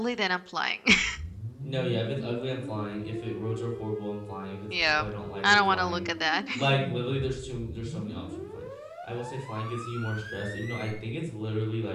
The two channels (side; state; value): both; identical; correlation 1.00